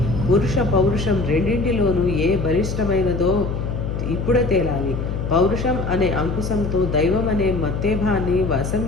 పురుష పౌరుషం రెండింటిలోనూ ఏ బలిష్టమైనదో ఇప్పుడే తేలాలి. పౌరుషం అనే అంకుశంతో దైవం అనే మత్తేభాన్ని వశం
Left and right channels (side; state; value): left; noise; hum, 3 dB below the sound